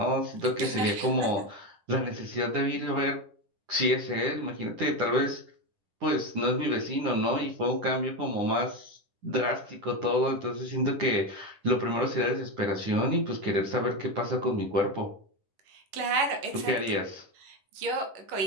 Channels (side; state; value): left; late; 9.9 ms